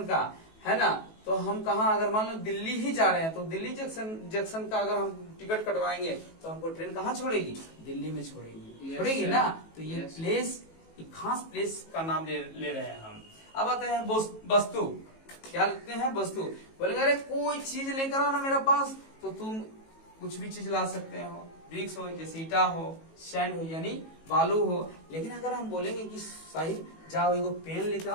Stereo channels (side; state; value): right; late; 18 ms